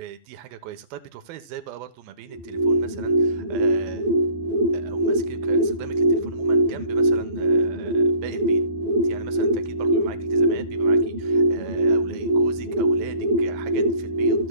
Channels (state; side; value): late; left; 12 ms